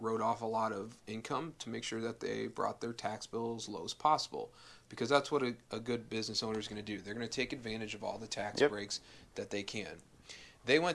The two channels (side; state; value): both; identical; correlation 1.00